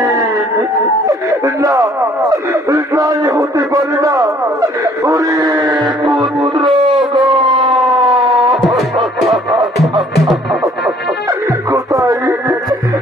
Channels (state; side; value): normal; both; correlation 0.59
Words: না নাই হতে পারে না ওরে পুত্র কোথায়